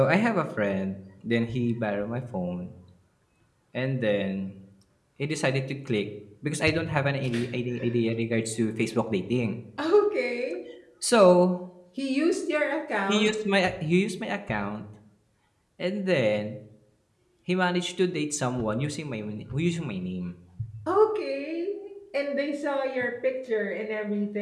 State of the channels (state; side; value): identical; both; correlation 1.00